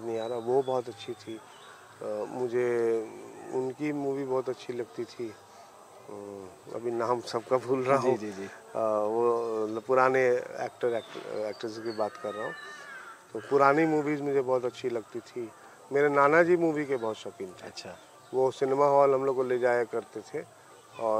नहीं आ रहा। वो बहुत अच्छी थी। मुझे उनकी मूवी बहुत अच्छी लगती थी। अभी नाम सबका भूल रहा हूँ। जी जी। वो पुराने एक्ट्रेस की बात कर रहा हूँ। तो पुरानी मूवीज़ मुझे बहुत अच्छी लगती थी। मेरे नाना जी मूवी के बहुत शौकीन थे। अच्छा। वो सिनेमा हॉल हम लोग को ले जाया करते थे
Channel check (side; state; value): both; identical; correlation 1.00